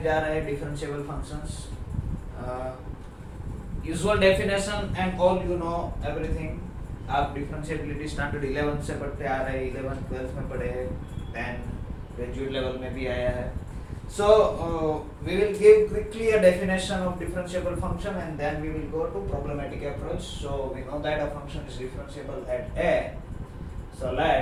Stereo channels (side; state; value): both; identical; correlation 1.00